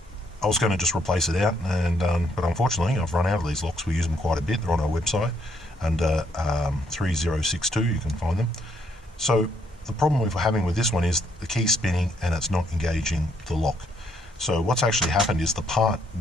was going to just replace it out, and but unfortunately I've run out of these locks. We use them quite a bit. They're on our website under 3062, you can find them. So the problem we're having with this one is the key's spinning and it's not engaging the lock. So what's actually happened is the part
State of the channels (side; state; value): both; normal; correlation 0.72